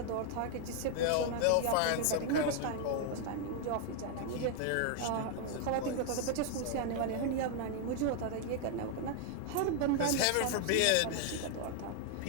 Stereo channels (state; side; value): different; both; correlation 0.00